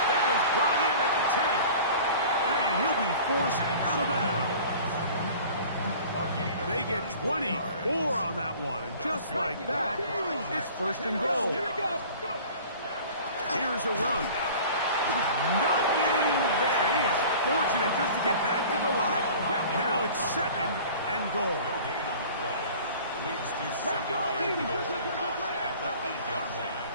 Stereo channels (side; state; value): both; inverted; correlation -0.44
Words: That is brought in at the 10. And he'll be forced out of bounds. They get 24 on that one. And just like that, it's first and goal. Here's a run. Nothing there. He is fortunate just to get back to the line. Now it's second and goal. No gain on the play. Leads to second and goal at the 8-yard